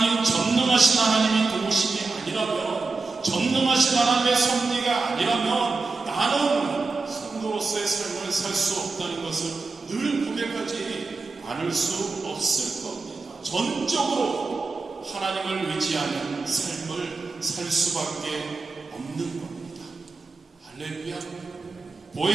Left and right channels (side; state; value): left; quieter; 4.0 dB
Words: 전능하신 하나님이 도우심이 아니라면, 전능하신 하나님의 섭리가 아니라면 나는 성도로서의 삶을 살 수 없다는 것을 늘 고백하지 않을 수 없을 겁니다. 전적으로 하나님을 의지하는 삶을 살 수밖에 없는 겁니다. 할렐루야.